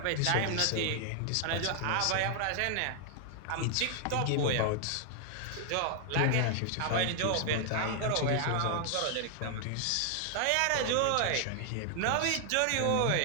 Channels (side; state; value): both; different; correlation 0.00